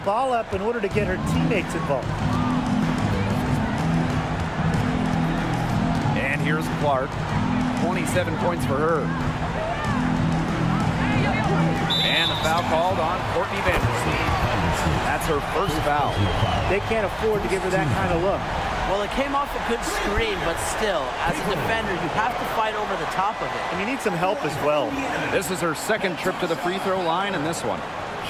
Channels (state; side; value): identical; both; correlation 1.00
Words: up in order to get her teammates involved. And here's Clark. 27 points for her. And a foul called on Courtney Vandersloot. That's her first foul. They can't afford to give her that kind of look. Well, it came off a good screen, but still, as a defender, you have to fight over the top of it. And you need some help as well. This is her second trip to the free throw line in this one.